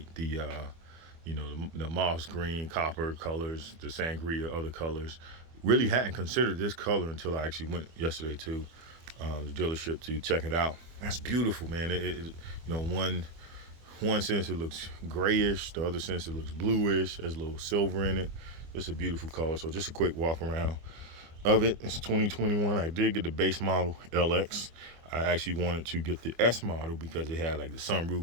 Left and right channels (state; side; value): late; left; 25 ms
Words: the moss green, copper colors, the sangria, other colors. Really hadn't considered this color until I actually went yesterday to the dealership to check it out. That's beautiful, man. One sense it looks grayish, the other sense it looks bluish. There's a little silver in it. It's a beautiful color. So just a quick walk around of it. It's 2021. I did get the base model LX. I actually wanted to get the S model because it had like the